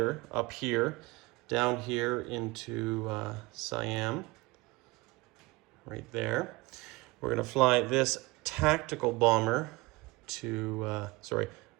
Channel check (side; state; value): left; quieter; 22.7 dB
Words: up here, down here into Siam, right there. We're going to fly this tactical bomber to,